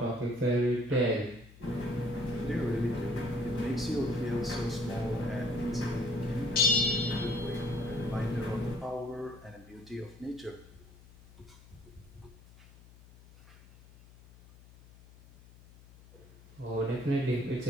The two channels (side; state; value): left; noise; hum, 22 dB below the sound